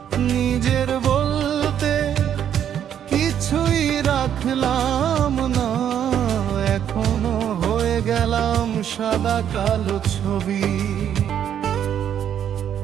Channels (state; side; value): quieter; left; 9.4 dB